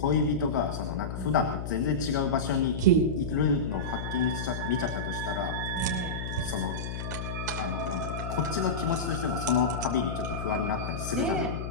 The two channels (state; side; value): noise; left; hum, 5 dB below the sound